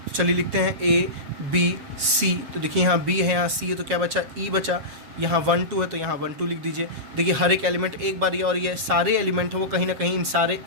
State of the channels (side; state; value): left; late; 7.4 ms